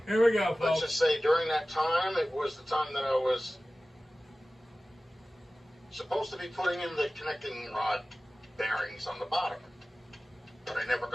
Here we go, Let's folks. just say during that time, it was the time that I was supposed to be putting in the connecting rod bearings on the bottom, but I never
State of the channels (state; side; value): normal; both; correlation 0.97